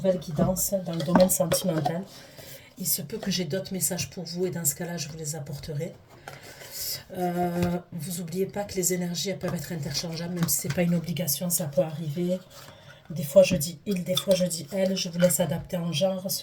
guidance dans le domaine sentimental. Il se peut que j'ai d'autres messages pour vous et dans ce cas-là je vous les apporterai. Vous n'oubliez pas que les énergies elles peuvent être interchangeables, même si ce n'est pas une obligation, ça peut arriver. Des fois je dis il, des fois je dis elle, je vous laisse adapter en genre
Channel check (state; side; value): identical; both; correlation 1.00